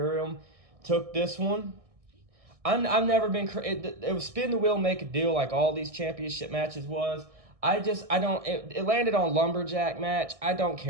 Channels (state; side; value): late; left; 1.6 ms